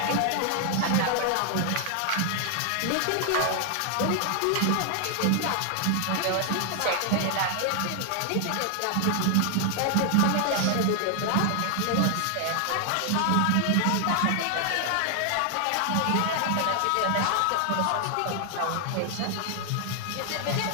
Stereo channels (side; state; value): both; different; correlation 0.00